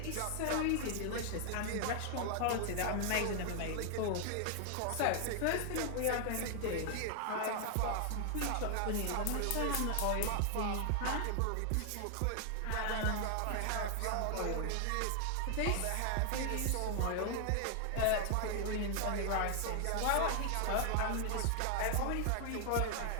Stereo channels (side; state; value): both; different; correlation 0.00